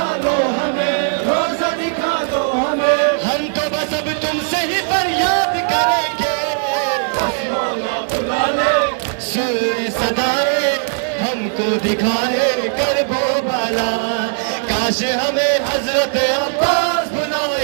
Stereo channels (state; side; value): silent; left; 67 dB below the other